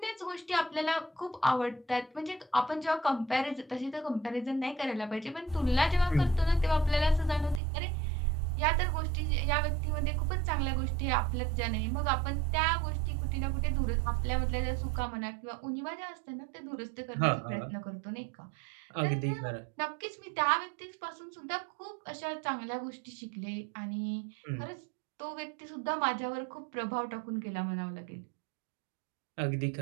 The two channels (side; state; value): left; drops out; at 7.6 s